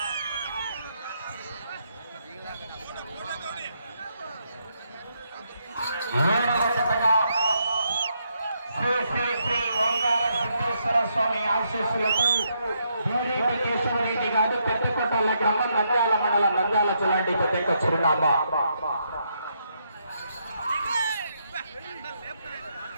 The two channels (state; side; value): inverted; both; correlation -0.78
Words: స్వామి ఆశీస్సులతో బోరెడ్డి కేశవరెడ్డి గారు పెద్దకొట్టాల గ్రామం నంద్యాల మండలం నంద్యాల జిల్లాంటి పెద్ద చిరునామా.